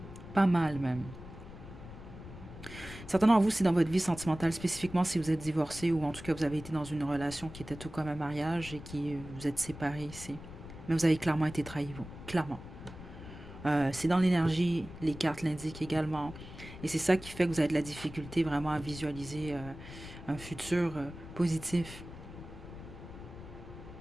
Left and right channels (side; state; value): left; noise; rumble, 14 dB below the sound